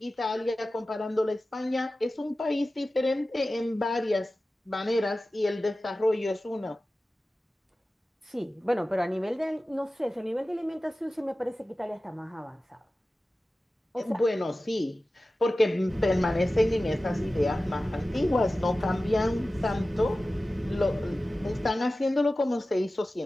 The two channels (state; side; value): normal; both; correlation 0.95